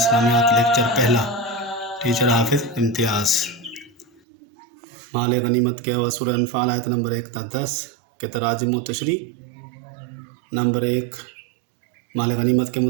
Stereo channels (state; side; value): drops out; left; at 4.2 s